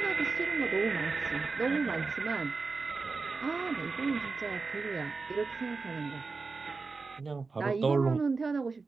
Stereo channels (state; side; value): quieter; left; 4.3 dB